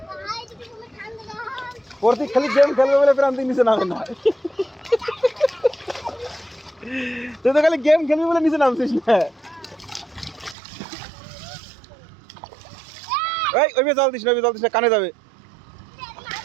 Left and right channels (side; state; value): left; drops out; at 10.6 s